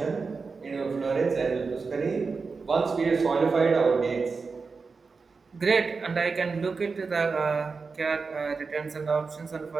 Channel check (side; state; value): left; quieter; 4.6 dB